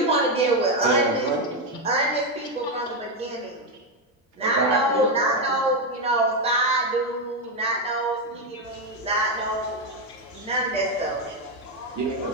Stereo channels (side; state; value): both; normal; correlation 0.06